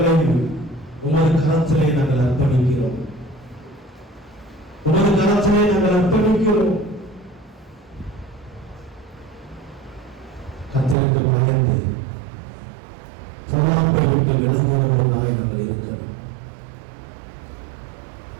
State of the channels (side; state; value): left; drops out; at 11.0 s